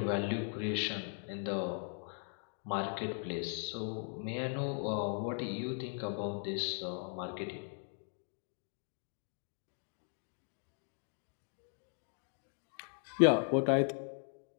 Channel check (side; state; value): right; silent; 52 dB below the other